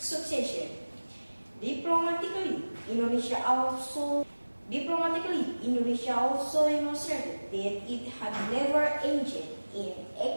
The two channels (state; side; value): inverted; both; correlation -1.00